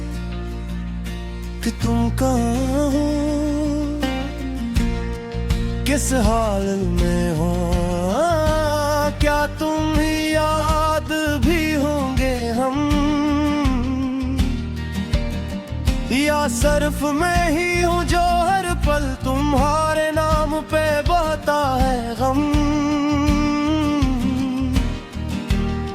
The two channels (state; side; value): identical; both; correlation 1.00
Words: कि तुम कहाँ हो, किस हाल में हो, क्या तुम ही याद भी होंगे हम, या सिर्फ मैं ही हूँ जो हर पल तुम्हारे नाम पे बहता है गम।